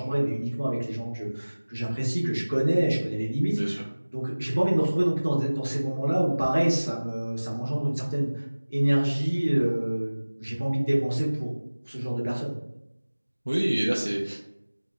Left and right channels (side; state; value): both; inverted; correlation -1.00